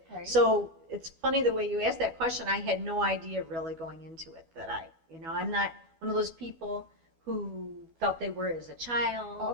Right. So it's funny the way you asked that question. I had no idea really going into it that I'm not one of those people who felt they were as a child.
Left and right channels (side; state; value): left; late; 12 ms